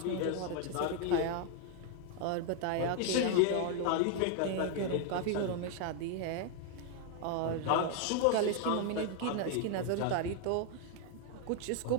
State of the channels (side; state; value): both; different; correlation 0.00